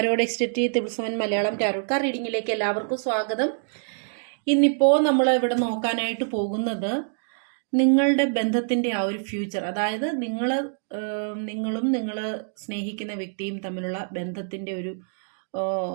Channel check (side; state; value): left; silent; digital silence